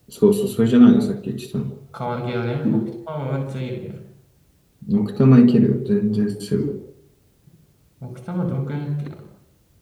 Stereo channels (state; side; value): identical; both; correlation 1.00